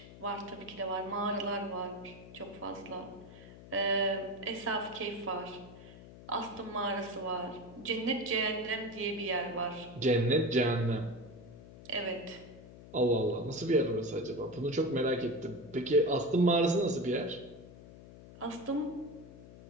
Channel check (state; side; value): noise; left; hum, 17 dB below the sound